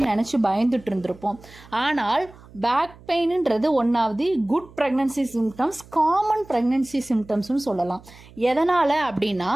நினச்சி பயந்துட்டு இருந்திருப்போம். ஆனால் பேக் பெயின்ன்றது ஒன்றாவது good pregnancy symptoms, common pregnancy சிம்டம்ஸ்னு சொல்லலாம். எதனால் அப்படின்னா,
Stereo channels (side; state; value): right; noise; hum, 22 dB below the sound